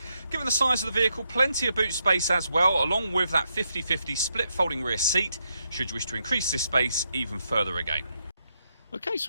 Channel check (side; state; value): both; inverted; correlation -0.81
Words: Given the size of the vehicle, plenty of boot space as well, along with that 50-50 split folding rear seat, should you wish to increase this space even further again. Okay,